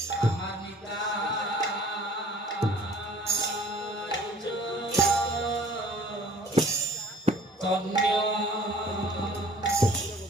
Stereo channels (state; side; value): normal; both; correlation 0.51